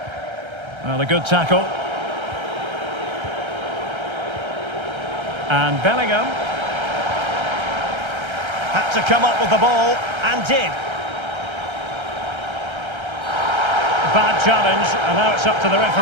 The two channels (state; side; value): late; left; 1.3 ms